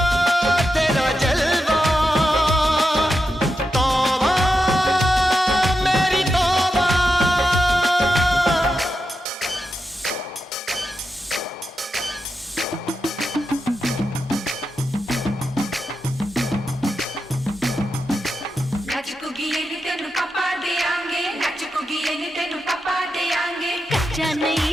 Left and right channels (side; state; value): both; normal; correlation 0.88